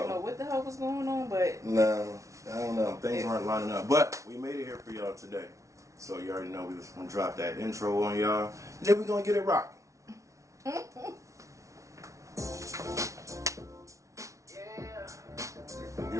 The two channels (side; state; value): left; late; 0.15 ms